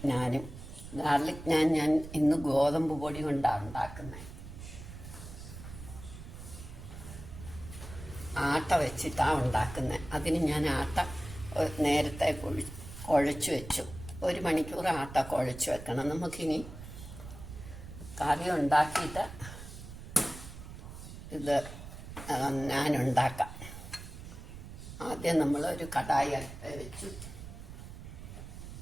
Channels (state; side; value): noise; right; rumble, 12 dB below the sound